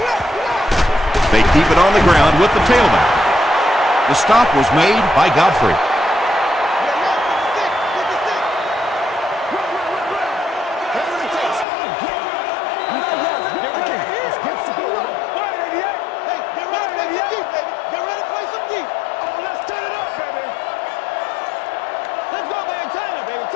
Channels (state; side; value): drops out; right; at 11.7 s